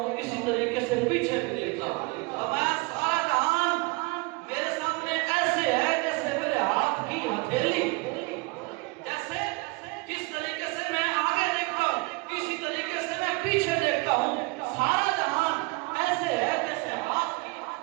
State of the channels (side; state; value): left; quieter; 26.7 dB